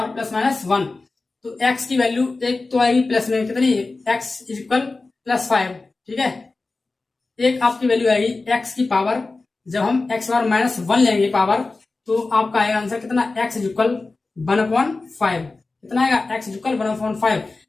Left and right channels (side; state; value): right; quieter; 3.6 dB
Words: प्लस माइनस 1। तो x की वैल्यू एक तो आएगी प्लस में कितनी, x इज इक्वल प्लस 5, ठीक है। एक आपकी वैल्यू आएगी x की पावर, जब हम x पावर माइनस 1 लेंगे पावर, तो आपका आएगा आंसर कितना, x इज इक्वल 1 अपॉन 5, कितना आएगा x इज इक्वल 1 अपॉन 5।